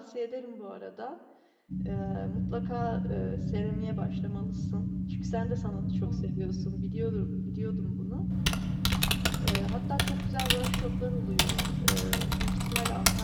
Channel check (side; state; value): both; identical; correlation 1.00